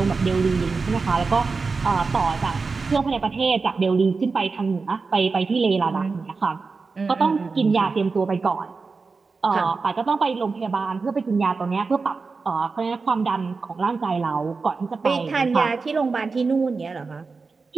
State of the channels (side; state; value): left; quieter; 4.4 dB